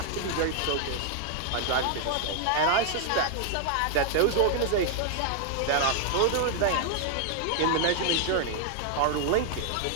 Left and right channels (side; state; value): both; different; correlation 0.00